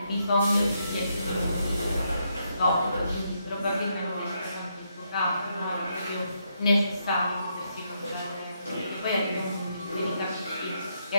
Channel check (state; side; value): inverted; both; correlation -0.78